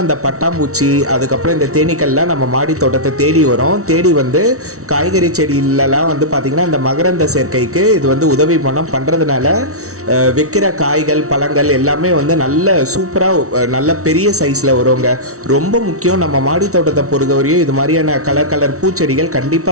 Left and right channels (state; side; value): late; left; 0.64 ms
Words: இந்த பட்டாம்பூச்சி, அதுக்கப்புறம் இந்த தேனீக்கள்லாம் நம்ம மாடி தோட்டத்தை தேடி வரும். தேடி காய்கறி செடியிலலாம் பார்த்தீங்கன்னா இந்த மகரந்த சேர்க்கைக்கு இது உதவி பண்ணுறதுனால வைக்கிற காய்கள், பழங்கள் எல்லாமே நல்ல சூப்பராக நல்ல பெரிய சைஸில் வருங்க. ரொம்ப முக்கியம், நம்ம மாடி தோட்டத்தை பொறுத்தவரையும் இது மாதிரியான கலர் கலர் பூச்செடிகள்